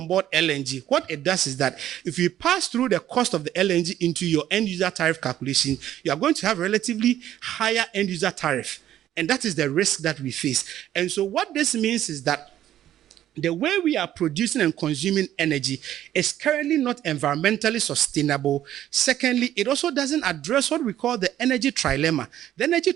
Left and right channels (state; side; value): quieter; left; 12.1 dB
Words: board LNG, what it does is that if you pass through the cost of the LNG into your end user tariff calculation, you are going to have a relatively higher end user tariff. And that is the risk that we face. And so what this means is that the way we are producing and consuming energy is currently not environmentally sustainable. Secondly, it also doesn't address what we call the energy trilemma. The energy